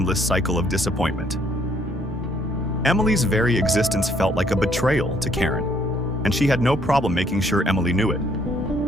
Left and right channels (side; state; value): both; normal; correlation 0.66